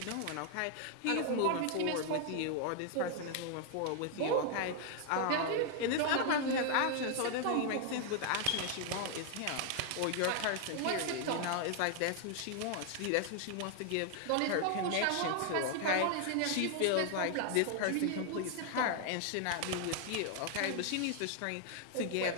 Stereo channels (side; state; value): both; different; correlation 0.00